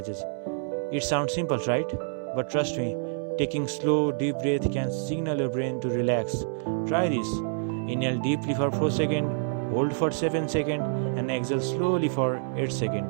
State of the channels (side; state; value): left; silent; 60 dB below the other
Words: It sounds simple, right? But trust me, taking slow, deep breath can signal your brain to relax. Try this. Inhale deeply for 4 seconds, hold for 7 seconds, and exhale slowly for 8